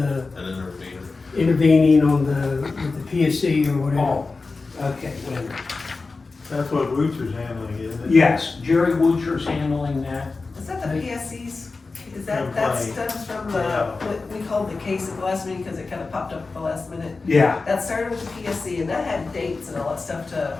An intervener. intervening on with the PSC or whatever? Oh, okay, wait a minute. That's what Woocher's handling, isn't it? Yes, Jerry Woocher's handling that. Is that the PSC's, is that Complaint. stems from Yeah. what we called the case at the last meeting, cause it kinda popped up at the last minute? Yeah, That started with the PSC and that had dates and all that stuff to,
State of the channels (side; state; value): right; quieter; 3.9 dB